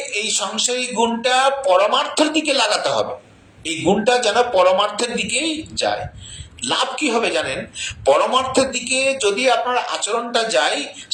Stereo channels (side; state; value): both; identical; correlation 1.00